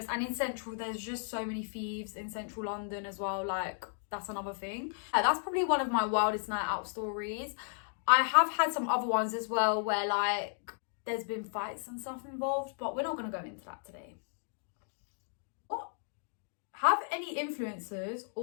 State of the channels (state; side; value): silent; right; digital silence